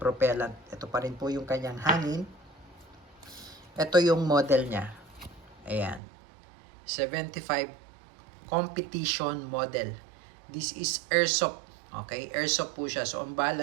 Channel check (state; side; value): drops out; left; at 6.0 s